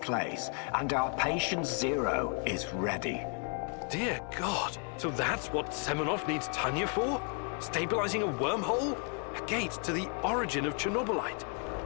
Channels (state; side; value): quieter; right; 39.5 dB